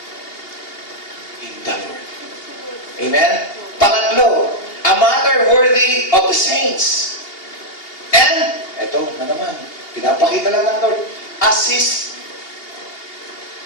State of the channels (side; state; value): right; late; 2.8 ms